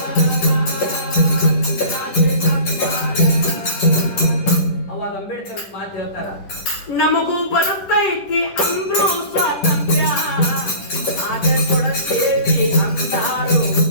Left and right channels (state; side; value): late; right; 10 ms